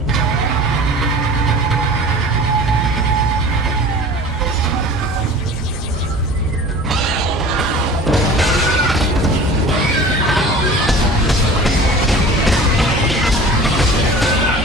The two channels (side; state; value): both; normal; correlation 0.41